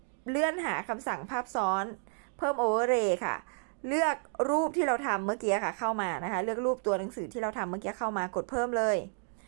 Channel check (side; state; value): left; silent; 57 dB below the other